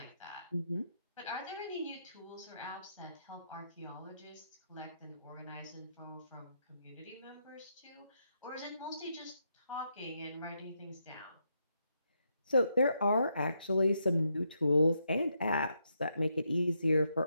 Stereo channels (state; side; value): inverted; both; correlation -0.80